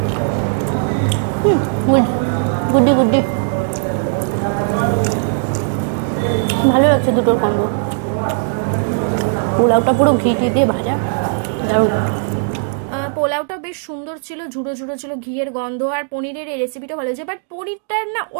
গুড্ডি গুড্ডি, ভালো লাগছে দুটোর কম্বো। পোলাওটা পুরো ঘি দিয়ে ভাজা, দারুণ। পোলাওটা বেশ সুন্দর ছিল, ঝুড়ো ঝুড়ো ছিল, ঘিয়ের গন্ধ। আর পনিরের এই রেসিপিটা ভালো হয়েছে, বাট পনিরটার না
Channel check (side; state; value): left; silent; digital silence